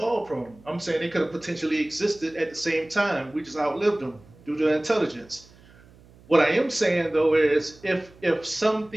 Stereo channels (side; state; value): right; noise; hum, 26 dB below the sound